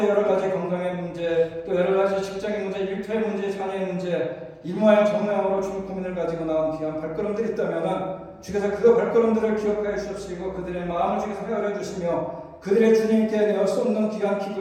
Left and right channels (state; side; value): identical; both; correlation 1.00